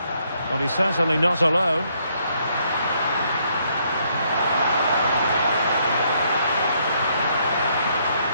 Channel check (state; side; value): inverted; both; correlation -0.71